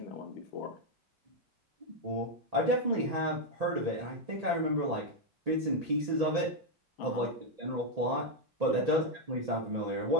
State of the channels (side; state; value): both; normal; correlation 0.02